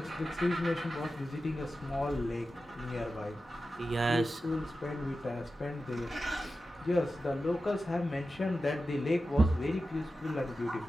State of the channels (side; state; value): both; normal; correlation 0.93